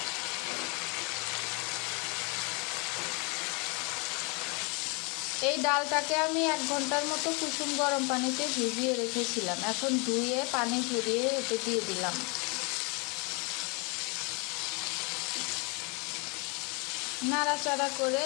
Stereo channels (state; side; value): quieter; right; 31.9 dB